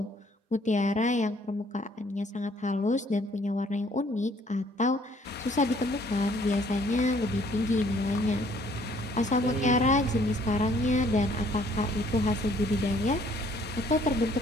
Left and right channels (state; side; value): normal; both; correlation 0.61